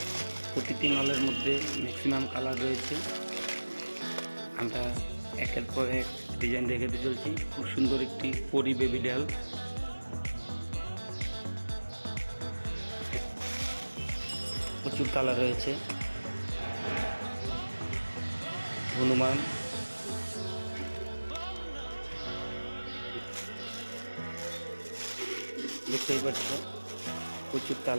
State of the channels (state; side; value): inverted; both; correlation -1.00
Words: প্রতিটি মালের মধ্যে ম্যাক্সিমাম কালার রয়েছে। আমরা একের পর এক ডিজাইন দেখাতে চলছি। খুব সুন্দর একটি পরি বেবি ডল, প্রচুর কালার রয়েছে। হনুমান, দেখতেই পাচ্ছ প্রচুর